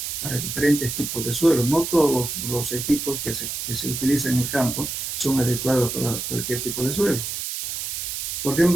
para diferentes tipos de suelos. No todos los equipos que se utilizan en el campo son adecuados para cualquier tipo de suelo. Por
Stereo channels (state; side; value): noise; right; hiss, 4 dB below the sound